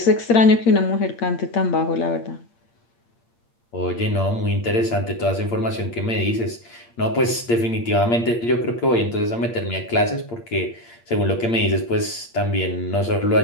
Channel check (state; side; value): late; right; 8.6 ms